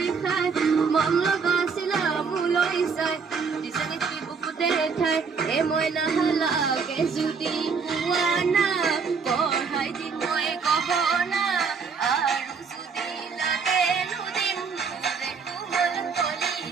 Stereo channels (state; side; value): quieter; left; 5.5 dB